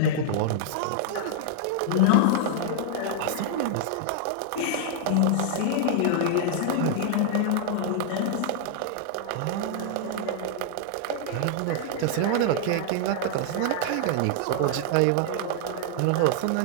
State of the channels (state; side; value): different; both; correlation -0.01